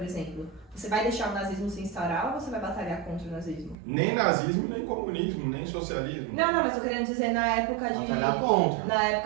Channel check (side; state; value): left; drops out; at 3.8 s